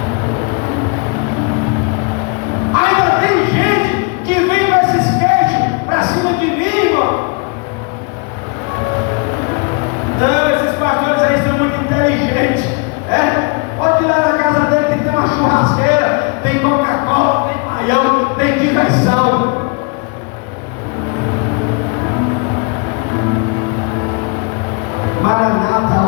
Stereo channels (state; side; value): quieter; right; 33.7 dB